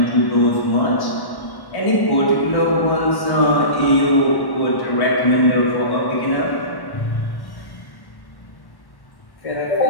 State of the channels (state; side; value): late; right; 1.1 ms